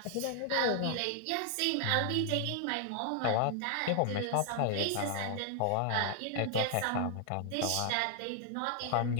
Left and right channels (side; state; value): both; different; correlation 0.00